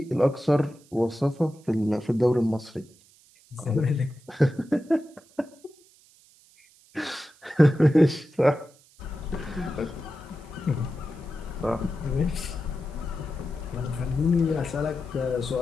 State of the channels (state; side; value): noise; right; hiss, 28 dB below the sound